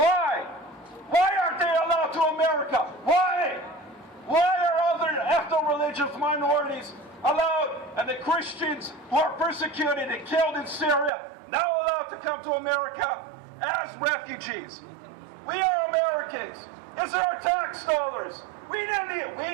Why aren't they allowed to America? Why? Why are other ethno-religious minorities allowed, and the Christians who are persecuted and killed in Syria now allowed to come to America as refugees? We are Americans. These are our tax dollars. We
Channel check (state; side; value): drops out; left; at 11.1 s